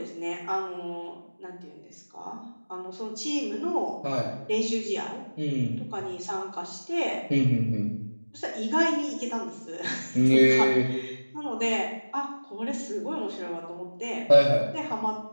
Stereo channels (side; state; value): both; inverted; correlation -1.00